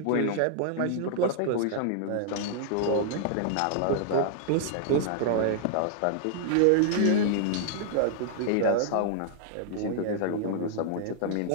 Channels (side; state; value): both; different; correlation -0.01